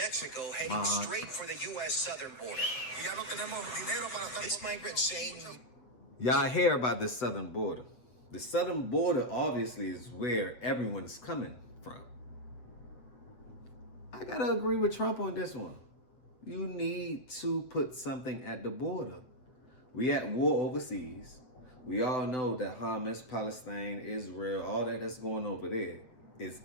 heading straight for the U.S. southern border. This migrant saying... Y'all hear about the southern border. The southern border obviously is where everyone's coming from. I gotta agree with Trump on this one. You need to put something at the border. We at war overseas. We all know that Hamas, Palestine, Israel, all that's going over there is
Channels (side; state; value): right; late; 8.2 ms